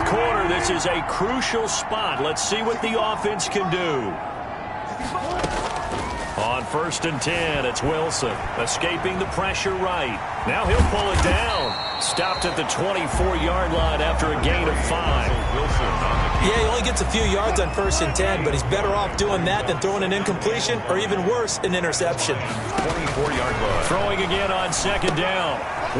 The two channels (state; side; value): identical; both; correlation 1.00